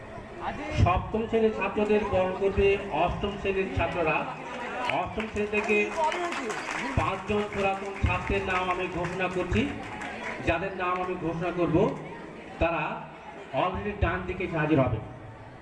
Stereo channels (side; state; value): both; identical; correlation 1.00